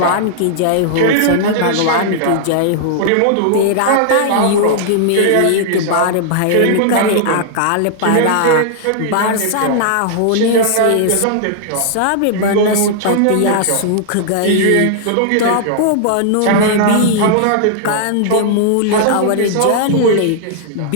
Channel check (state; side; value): different; both; correlation -0.01